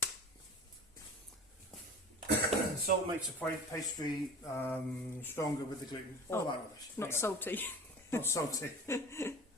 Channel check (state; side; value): normal; both; correlation 0.38